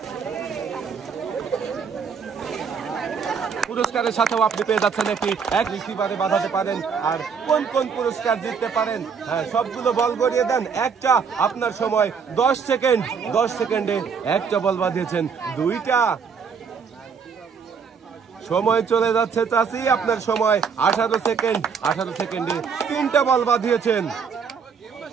পুরস্কারের সাথেও আপনি পেয়ে যাচ্ছেন এক রিসিভারে বাঁধাতে পারেন। আর কোন কোন পুরস্কার জিততে পারেন, হ্যাঁ, সবগুলো বল গড়িয়ে দেন। একটা, আপনার সময় 10 সেকেন্ড। 10 সেকেন্ডে একটা বল বাঁধিয়েছেন। 2টা। সময় চলে যাচ্ছে চাচি। আপনার সময় 18 সেকেন্ড। 18 সেকেন্ডে 3টা বল বাঁধিয়েছেন।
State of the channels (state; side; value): quieter; left; 6.2 dB